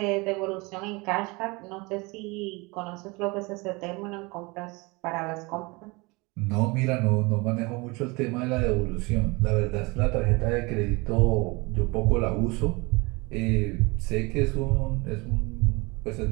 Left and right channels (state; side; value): quieter; left; 26.0 dB